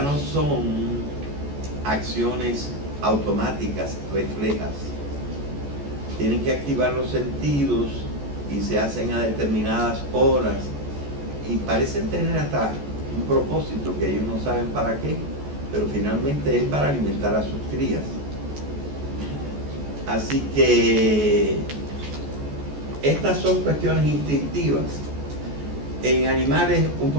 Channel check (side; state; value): left; late; 14 ms